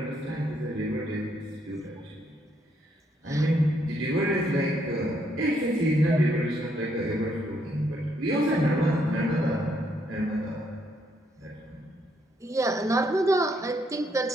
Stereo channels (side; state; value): both; normal; correlation 0.73